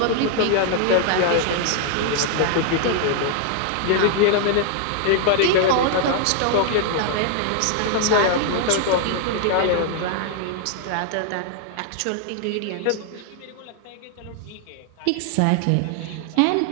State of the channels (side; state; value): both; different; correlation 0.00